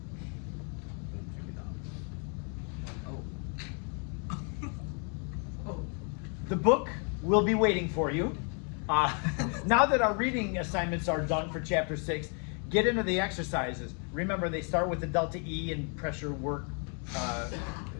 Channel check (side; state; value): right; quieter; 39.7 dB